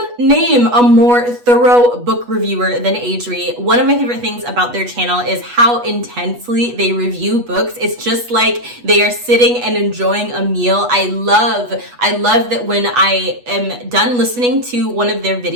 name a more thorough book reviewer than Adri. One of my favorite things about their channel is how intensely they review books. It's just like they are sitting and enjoying a meal. I love that when I am done listening to one of their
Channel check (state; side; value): late; left; 8.2 ms